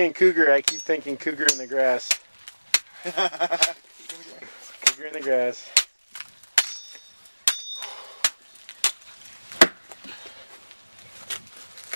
cougar, I keep thinking cougar in the grass. Cougar in the grass.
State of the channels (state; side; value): inverted; both; correlation -1.00